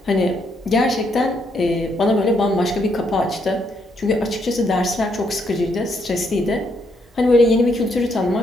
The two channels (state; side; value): normal; both; correlation 0.74